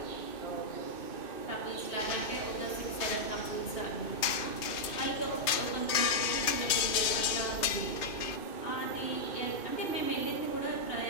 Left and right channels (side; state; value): right; late; 2.6 ms